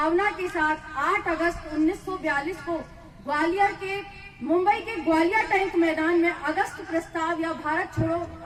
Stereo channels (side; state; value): both; identical; correlation 1.00